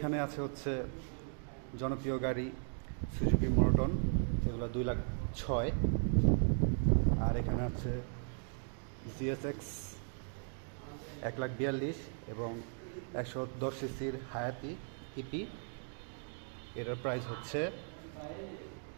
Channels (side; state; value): left; silent; 53 dB below the other